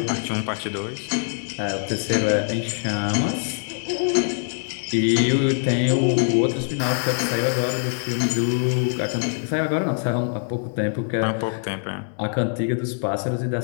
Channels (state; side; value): silent; right; digital silence